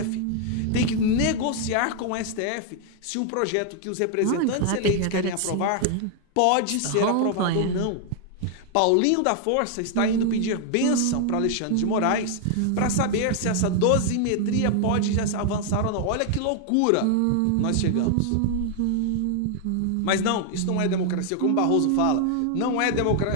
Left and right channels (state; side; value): different; both; correlation 0.00